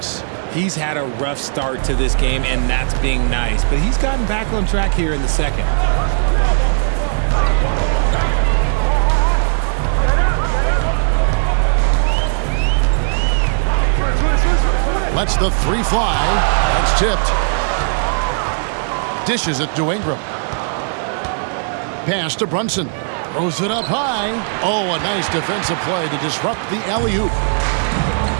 He's had a rough start to this game, and that's being nice. But he's gotten back on track here in the second. Lets the 3 fly. That's tipped. Dishes it to Ingram. Pass to Brunson. Throws it up high. Oh, a nice defensive play to disrupt the alley-oop.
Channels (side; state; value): left; silent; digital silence